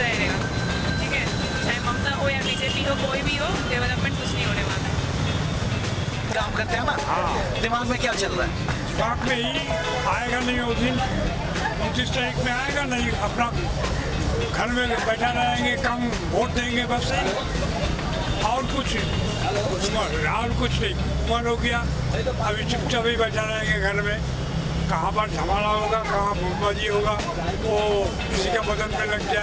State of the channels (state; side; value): identical; both; correlation 1.00